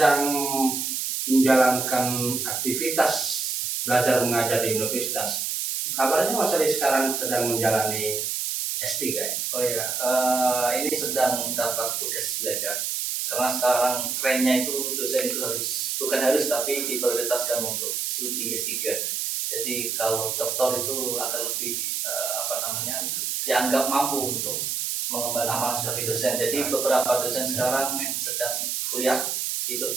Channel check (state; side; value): noise; right; hiss, 1 dB below the sound